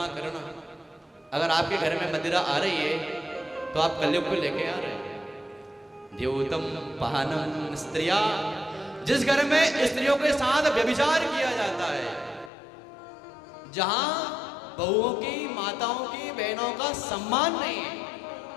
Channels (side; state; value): right; drops out; at 12.5 s